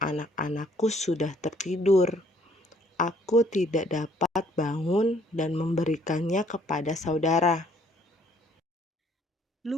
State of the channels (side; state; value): both; normal; correlation 0.62